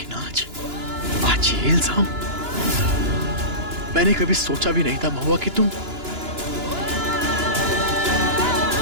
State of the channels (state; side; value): late; left; 2.9 ms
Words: आज ये इल्जाम। मैंने कभी सोचा भी नहीं था महुआ कि तुम